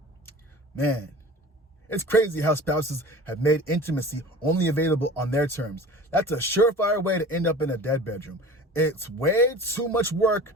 Man, it's crazy how spouses have made intimacy only available on their terms. That's a surefire way to end up in a dead bedroom. It's way too much work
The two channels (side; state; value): both; normal; correlation 0.40